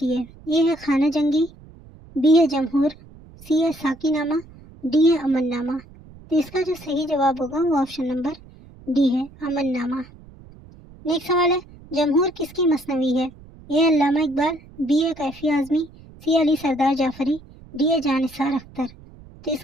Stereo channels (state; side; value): noise; right; rumble, 21 dB below the sound